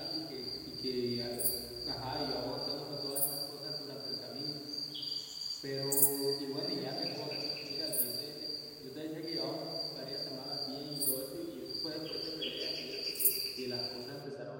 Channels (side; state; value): both; identical; correlation 1.00